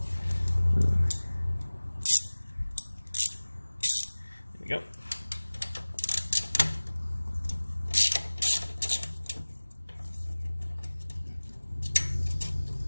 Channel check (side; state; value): both; inverted; correlation -1.00